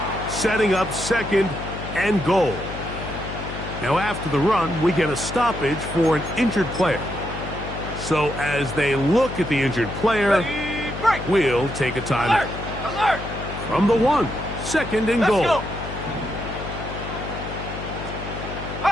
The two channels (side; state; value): left; noise; hum, 9 dB below the sound